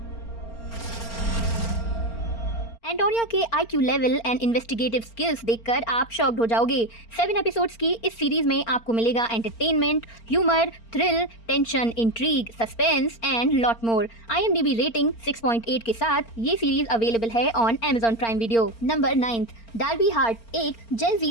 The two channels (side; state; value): right; late; 4.4 ms